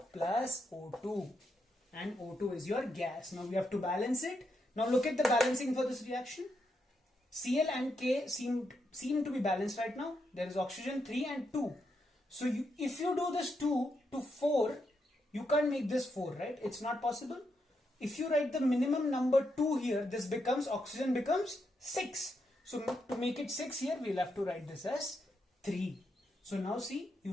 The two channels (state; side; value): normal; both; correlation 0.81